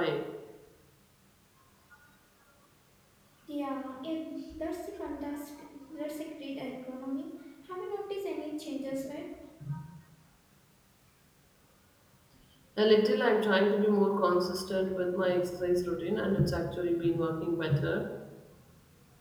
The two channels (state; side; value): identical; both; correlation 1.00